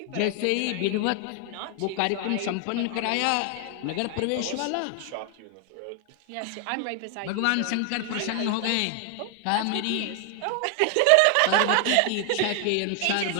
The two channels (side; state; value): both; different; correlation 0.00